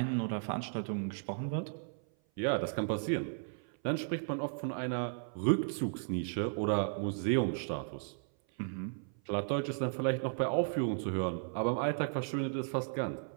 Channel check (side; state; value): left; silent; 54 dB below the other